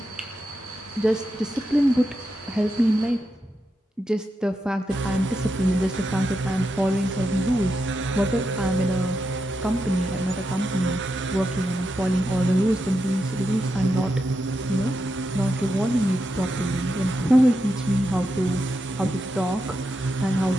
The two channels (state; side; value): normal; both; correlation 0.86